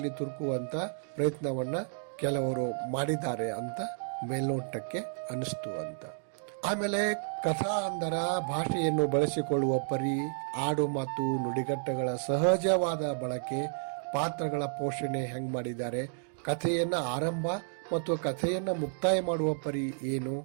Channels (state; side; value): silent; left; digital silence